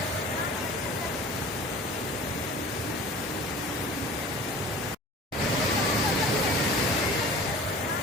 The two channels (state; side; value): normal; both; correlation 0.41